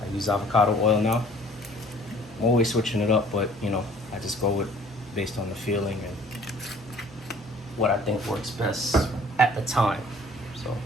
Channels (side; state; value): both; normal; correlation 0.54